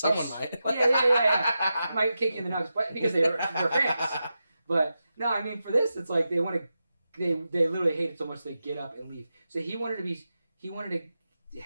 might. Yeah. Might kick you in the nuts, but because they're fans. But no, I mean, for this, it's like they literally hate it so much they get up and leave. So he wanted to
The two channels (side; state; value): both; inverted; correlation -0.90